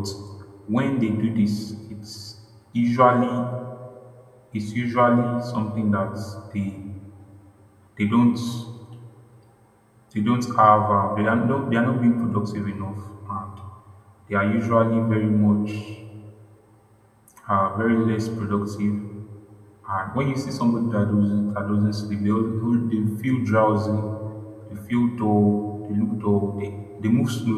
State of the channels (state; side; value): identical; both; correlation 1.00